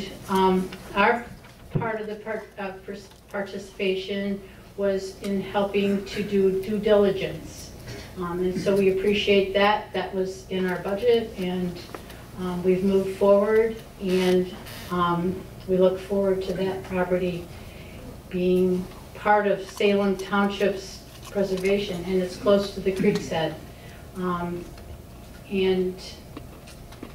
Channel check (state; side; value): identical; both; correlation 1.00